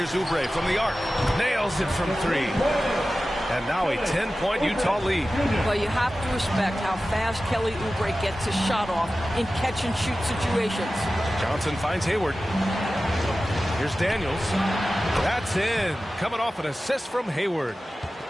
Oubre from the arc. Nails it from 3. And now a 10-point Utah lead. Well, you have to respect how fast Kelly Oubre gets his shot off in catch-and-shoot situations. Johnson finds Hayward. Here's Daniels. That's in. Coming off an assist from Hayward.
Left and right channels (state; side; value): normal; both; correlation 0.95